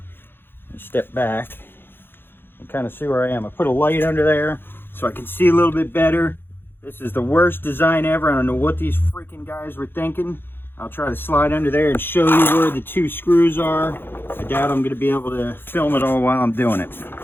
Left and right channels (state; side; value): late; right; 0.10 ms